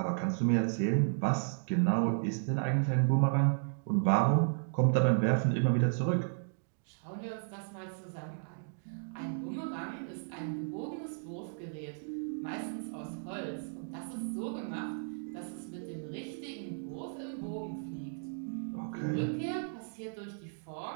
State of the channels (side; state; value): left; silent; digital silence